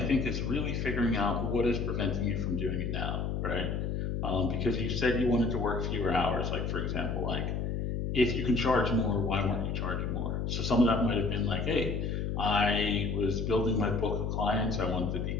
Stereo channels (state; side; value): noise; left; hum, 1 dB below the sound